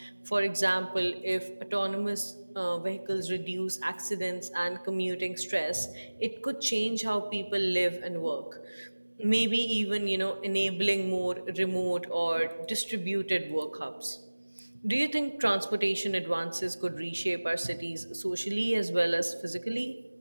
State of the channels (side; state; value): both; inverted; correlation -1.00